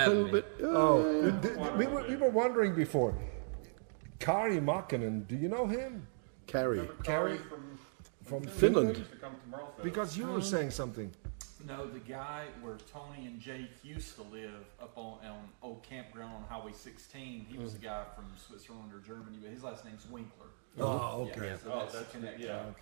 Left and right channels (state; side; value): silent; left; digital silence